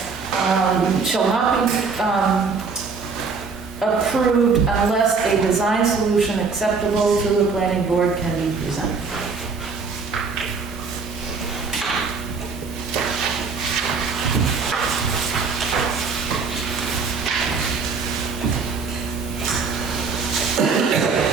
Shall not be approved unless a design solution acceptable to the planning board can be presented.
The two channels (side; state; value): left; quieter; 4.8 dB